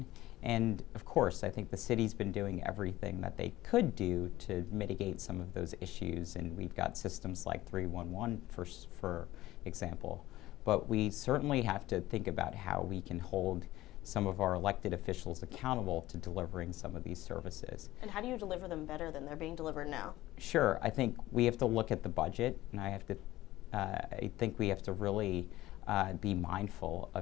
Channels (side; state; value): right; quieter; 16.4 dB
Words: And of course, I think the city's been doing everything that they could do to mitigate some of those issues. And we've got systems like 311, for example. But we certainly have to think about how we can hold some of our elected officials accountable to delivering some of these services. And how do you deliver them better than they're being delivered now? Sure, I think we have to look at the budget, and I think we have to really be mindful